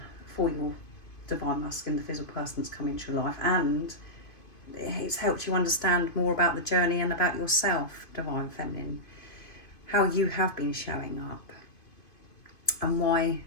for your Divine Masculine, the physical person that's come into your life. And it's helped you understand more about the journey and about yourself, Divine Feminine. How you have been showing up. And why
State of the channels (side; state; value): right; late; 2.5 ms